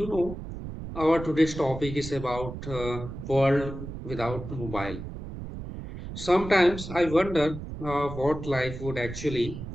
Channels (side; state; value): right; noise; rumble, 9 dB below the sound